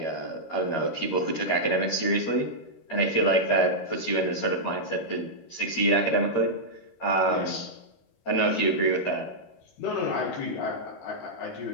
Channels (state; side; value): late; right; 13 ms